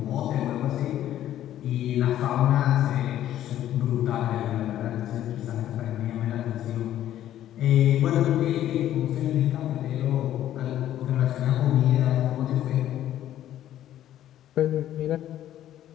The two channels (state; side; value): quieter; right; 12.2 dB